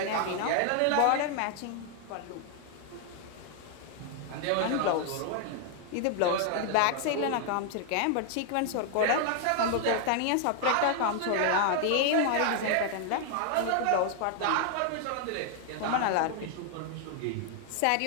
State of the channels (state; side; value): different; both; correlation 0.00